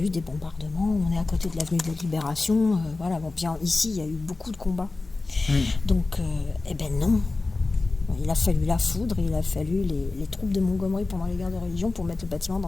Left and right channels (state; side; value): quieter; right; 3.5 dB